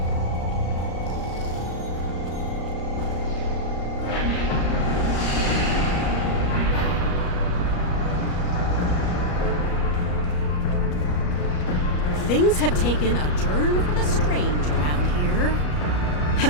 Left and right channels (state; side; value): late; right; 33 ms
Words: Things have taken a turn for the strange around here.